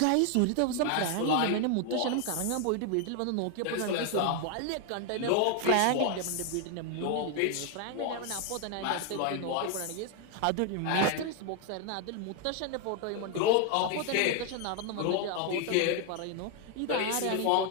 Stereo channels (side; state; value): both; different; correlation 0.00